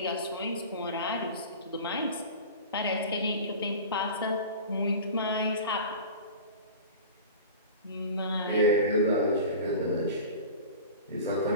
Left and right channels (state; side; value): inverted; both; correlation -0.35